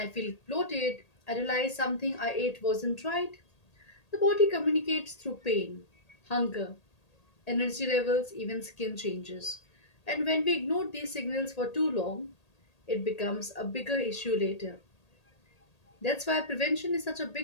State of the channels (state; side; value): late; right; 1.8 ms